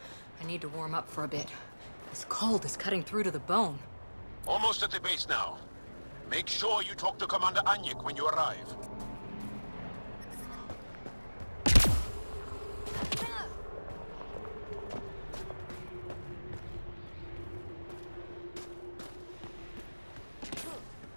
I need to warm up for a bit. This cold is cutting through to the bone. Almost at the base now. Make sure you talk to Commander Anyik when you arrive.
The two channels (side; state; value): both; inverted; correlation -1.00